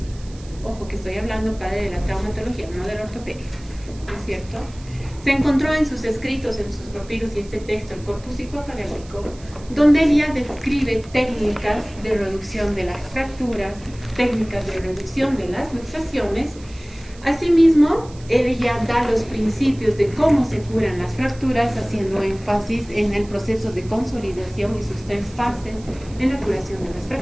Ojo que estoy hablando padre de la traumatología, no de la ortopedia, ¿no es cierto? Se encontró en sus escritos, en sus papiros y este texto, el Corpus Hippocraticum, donde él ya describe técnicas de reducción de las fracturas, técnicas de reducción de las luxaciones. Asimismo, él ya da los principios de cómo se curan las fracturas, haciendo énfasis en el proceso de consolidación y sus 3 fases en la curación de las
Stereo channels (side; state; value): right; noise; hiss, 23 dB below the sound